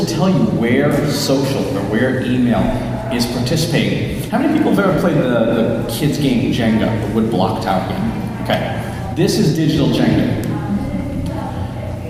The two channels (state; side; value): identical; both; correlation 1.00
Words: tell you where social or where email is participating. How many people have ever played the kids game Jenga, the wood block tower game? Okay, this is digital Jenga.